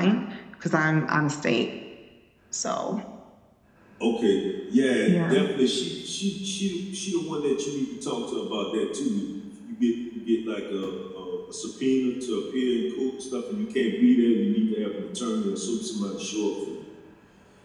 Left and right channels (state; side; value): identical; both; correlation 1.00